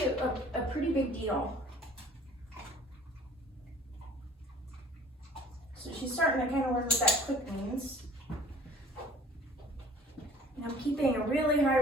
a pretty big deal. So she's starting to kind of learn what that click means. And I'm keeping a really high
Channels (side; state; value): both; normal; correlation 0.51